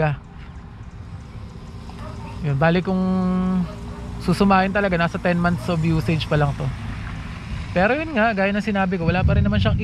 Yun, bali kung susumahin talaga, nasa 10 months of usage pa lang to. Pero yun nga, gaya ng sinabi ko, wala pa rin naman siyang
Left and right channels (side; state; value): both; identical; correlation 1.00